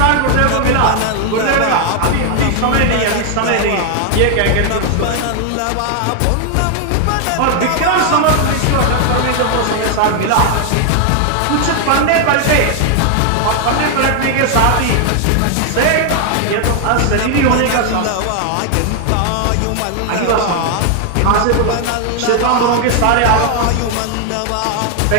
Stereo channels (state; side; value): different; both; correlation 0.00